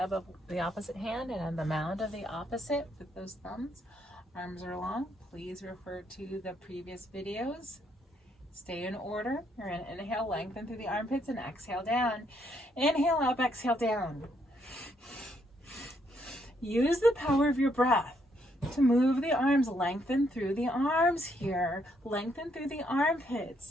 of the opposite hand and on the mound of the opposite with those thumbs. Arms are long. Please refer to the previous videos. Stay in order. You're going to inhale, lengthen through the armpits and exhale down. Inhale up, exhale down. Use the power of your breath to move the arms, lengthen through the arms here. Lengthen through the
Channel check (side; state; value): both; normal; correlation 0.73